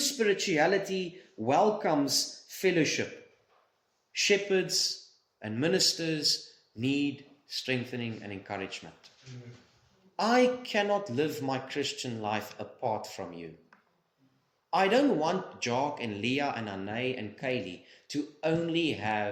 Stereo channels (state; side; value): identical; both; correlation 1.00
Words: welcomes fellowship. Shepherds and ministers need strengthening and encouragement. I cannot live my Christian life apart from you. I don't want Jock and Leah and Anay and Kaylee to only